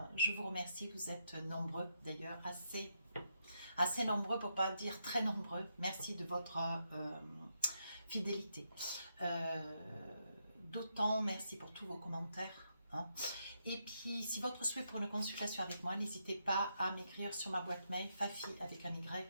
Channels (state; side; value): inverted; both; correlation -0.81